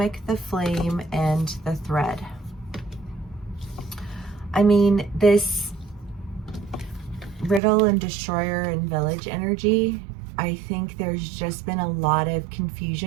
the Flame, and the Thread. I mean, this Riddle and Destroyer and Village energy, I think there's just been a lot of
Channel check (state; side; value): drops out; left; at 7.6 s